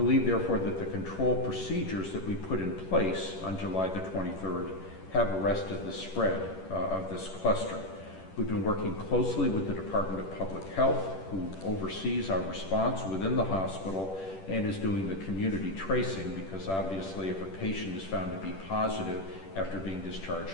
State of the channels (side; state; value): right; late; 10 ms